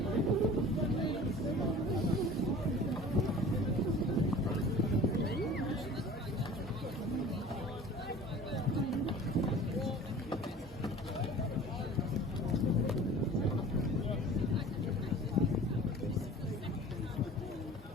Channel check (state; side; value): normal; both; correlation 0.43